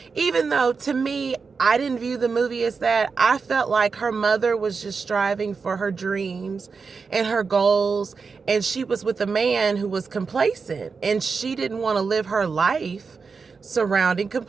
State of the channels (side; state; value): left; quieter; 5.0 dB